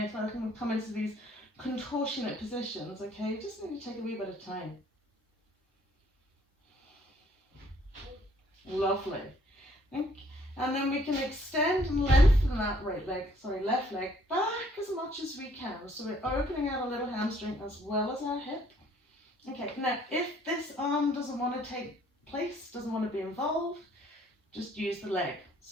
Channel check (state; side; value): normal; both; correlation 0.62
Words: like we come into these contortionate positions, okay, you just need to take a wee bit of time. Lovely. Okay. And then we can extend and lengthen that left leg back as much as we can. So we're opening out a little hamstring as well as our hip. Okay, now if this arm doesn't want to take place, doesn't want to be involved, just use the leg.